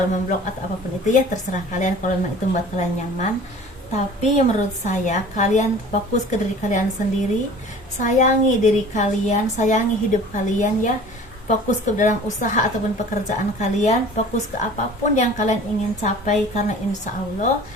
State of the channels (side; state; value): both; normal; correlation 0.45